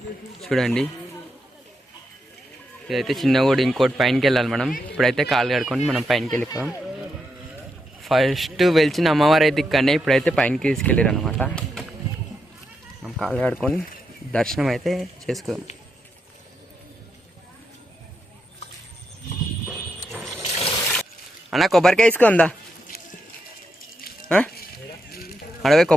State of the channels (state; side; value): normal; both; correlation 0.83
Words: చూడండి, ఇదైతే చిన్న కూడా ఇంకోటి పైనకి వెళ్ళాలి మనం. ఇప్పుడైతే కాలు కడుకొని మనం పైనకి వెళ్ళిపోదాం. ఫస్ట్ వెలిచిన అమ్మవారు అయితే ఇక్కడనే, ఇప్పుడైతే పైనకి తీసుకెళ్ళారు అనమాట. మనం కాలు కడుకొని దర్శనం అయితే చేసుకుందాం. అన్న, కొబ్బరికాయ తీసుకుందా? అడవి